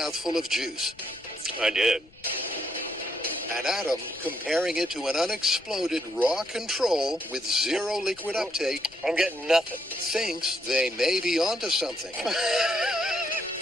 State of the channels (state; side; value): noise; left; rumble, 28 dB below the sound